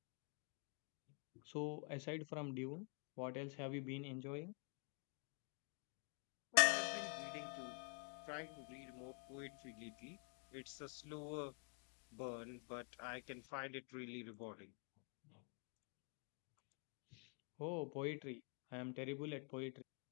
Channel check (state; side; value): quieter; right; 39.7 dB